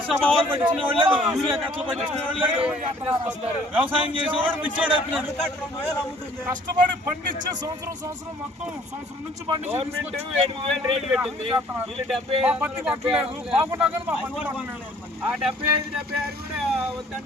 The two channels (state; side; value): normal; both; correlation 0.57